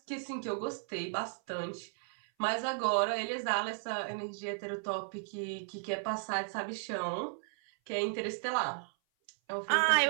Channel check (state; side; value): silent; left; 55 dB below the other